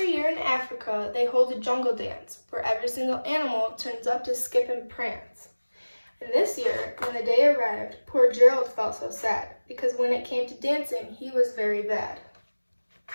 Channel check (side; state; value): both; inverted; correlation -1.00